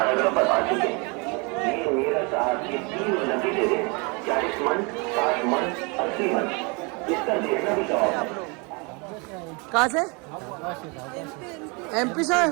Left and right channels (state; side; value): quieter; left; 30.8 dB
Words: पर आ चुके हैं। ये मीरा साहब की 3 नतीजे हैं, 40 मन, 60 मन, 80 मन। इसका देखना भी चाहो। कहाँ से? MP से आए